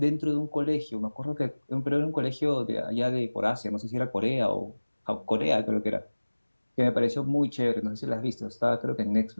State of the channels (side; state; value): both; inverted; correlation -1.00